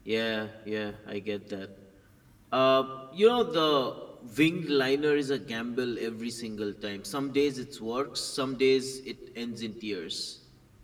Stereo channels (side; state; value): both; identical; correlation 1.00